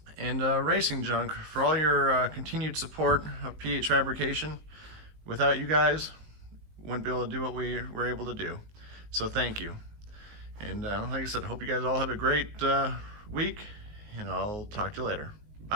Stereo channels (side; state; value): left; late; 19 ms